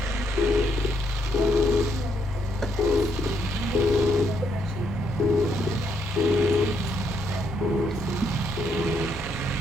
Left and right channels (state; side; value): normal; both; correlation 0.75